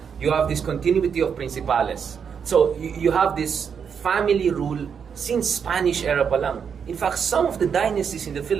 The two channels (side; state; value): left; quieter; 7.0 dB